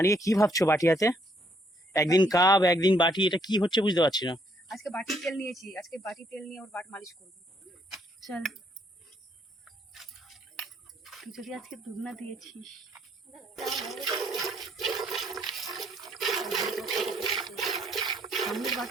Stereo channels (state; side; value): normal; both; correlation 0.69